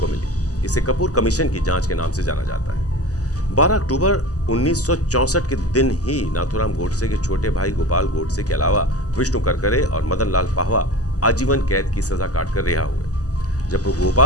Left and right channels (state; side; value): late; right; 0.67 ms